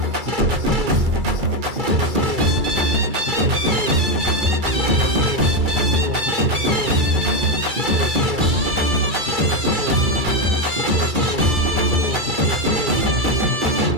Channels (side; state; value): left; late; 2.3 ms